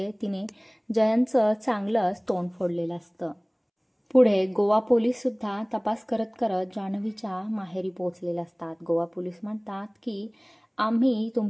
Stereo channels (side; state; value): both; identical; correlation 1.00